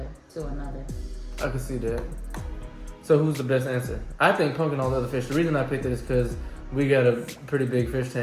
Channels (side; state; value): both; identical; correlation 1.00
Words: another. I can see that. So who's the best answer? I think punk and all the other fish. The reason I picked it is because we got a pretty big fish